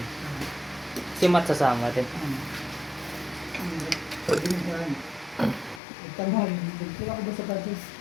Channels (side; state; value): right; drops out; at 5.8 s